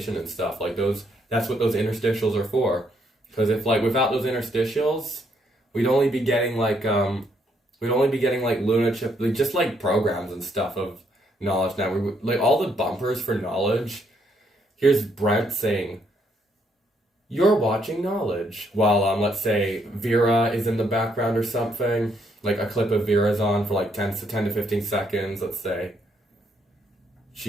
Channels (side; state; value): both; normal; correlation 0.73